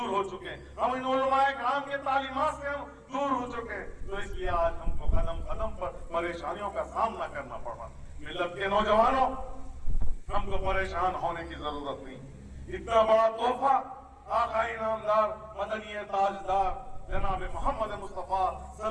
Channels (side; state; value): both; identical; correlation 1.00